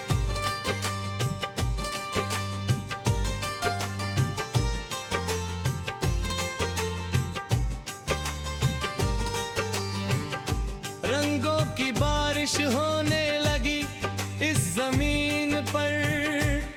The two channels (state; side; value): identical; both; correlation 1.00